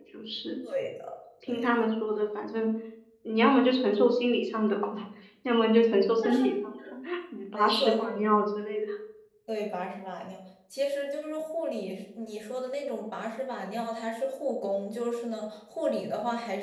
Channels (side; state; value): both; identical; correlation 1.00